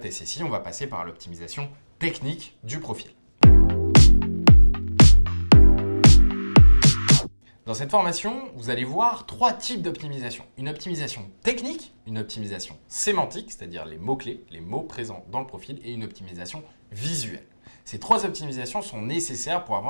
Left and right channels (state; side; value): inverted; both; correlation -1.00